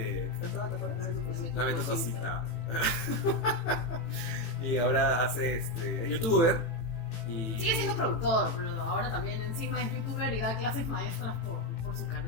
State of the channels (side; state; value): right; late; 18 ms